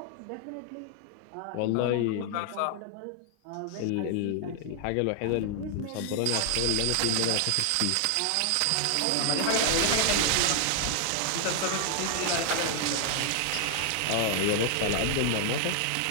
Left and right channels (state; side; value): different; both; correlation 0.00